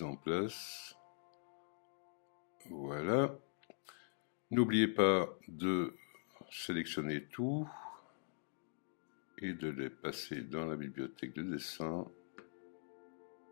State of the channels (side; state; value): right; silent; digital silence